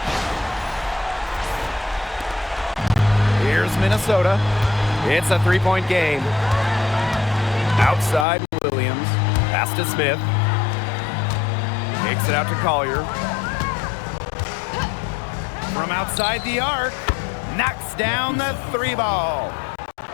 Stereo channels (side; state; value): right; drops out; at 8.2 s